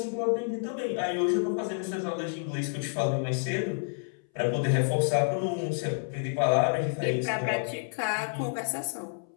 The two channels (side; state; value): right; silent; 58 dB below the other